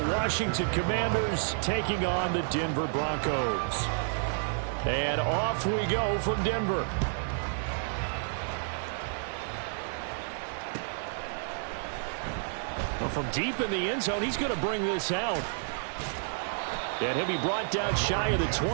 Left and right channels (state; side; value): silent; left; 58 dB below the other